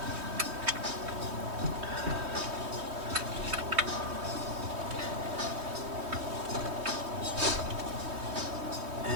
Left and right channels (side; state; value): left; late; 3.2 ms